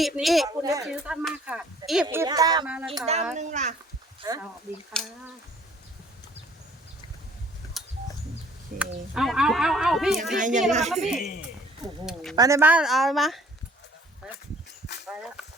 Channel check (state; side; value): normal; both; correlation 0.56